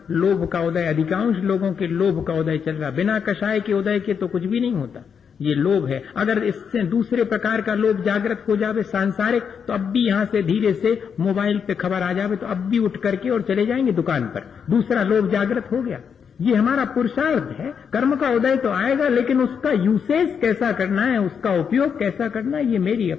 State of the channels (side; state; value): right; quieter; 6.9 dB